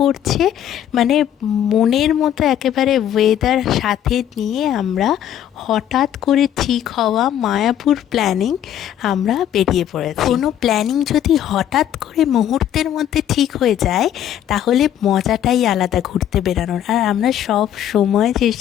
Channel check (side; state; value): right; quieter; 10.7 dB